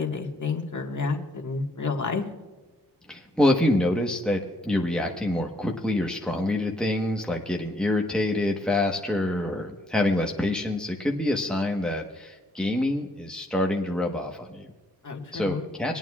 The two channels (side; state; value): both; normal; correlation 0.70